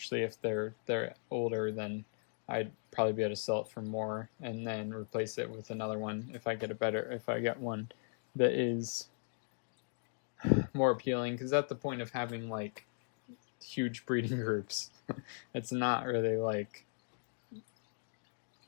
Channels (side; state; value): right; silent; digital silence